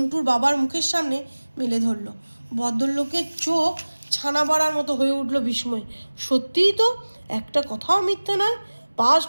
বাবার মুখের সামনে মেলে ধরল। ভদ্রলোকের চোখ ছানা বাড়ার মতো হয়ে উঠল বিস্ময়। সত্যিই তো, একটা কথাও মিথ্যে নয়,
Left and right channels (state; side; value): inverted; both; correlation -1.00